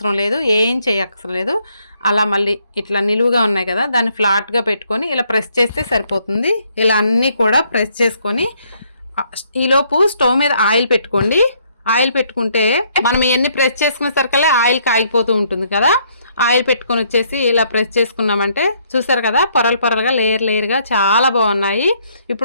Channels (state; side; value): inverted; both; correlation -0.69